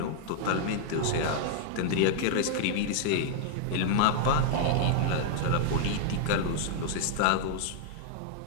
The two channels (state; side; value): different; both; correlation 0.00